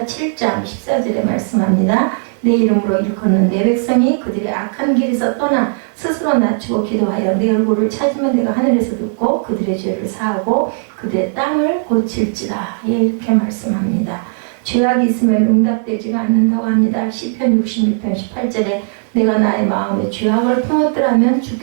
7장 14절에 말씀합니다. 내 이름으로 일컫는 내 백성이 그들의 악한 길에서 떠나 스스로 낮추고 기도하여 내 얼굴을 찾으면 내가 하늘에서 듣고 그들의 죄를 사하고 그들의 땅을 고칠지라. 예, 이렇게 말씀합니다. 죄악이 있으면 응답되지가 않는다고 합니다. 시편 66편 18절에 내가 나의 마음에 죄악을 품었더라면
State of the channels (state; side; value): silent; left; 55 dB below the other